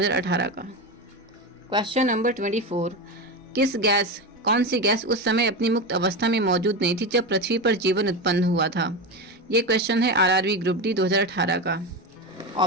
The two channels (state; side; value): normal; both; correlation 0.19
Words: का। क्वेश्चन नंबर 24, कौन सी गैस उस समय अपनी मुक्त अवस्था में मौजूद नहीं थी जब पृथ्वी पर जीवन उत्पन्न हुआ था? ये क्वेश्चन है आरआरबी ग्रुप डी 2018 का।